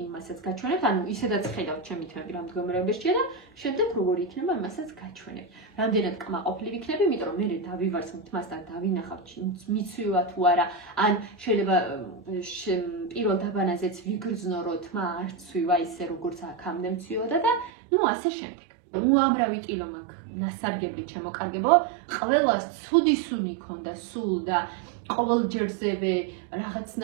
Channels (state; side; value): drops out; left; at 17.7 s